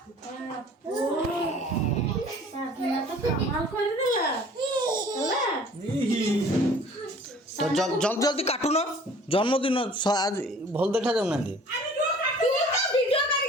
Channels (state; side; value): normal; both; correlation 0.50